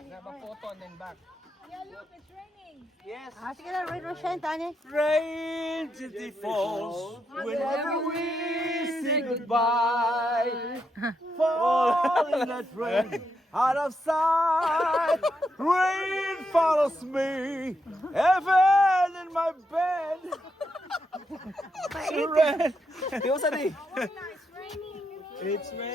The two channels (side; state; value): both; normal; correlation 0.82